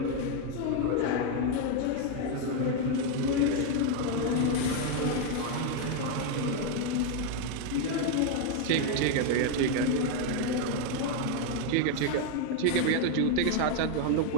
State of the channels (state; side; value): different; both; correlation 0.01